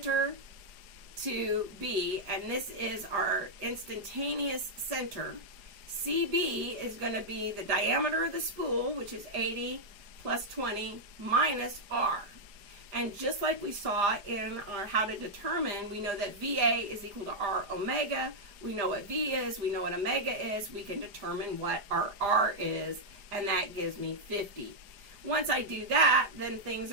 to B, and this is our instantaneous center. CB is going to be the diameter of the spool, which is 80 plus 20 minus R. And just like we saw in our how to determine, we know that VA is equal to R omega. We know what V is, we know what omega is. We can determine what our R is, and that gives me 50. Once I do that, then things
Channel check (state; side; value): late; left; 4.9 ms